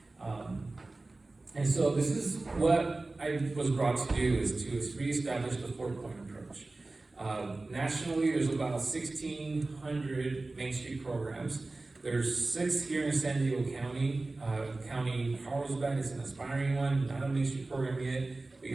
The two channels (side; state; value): left; quieter; 3.2 dB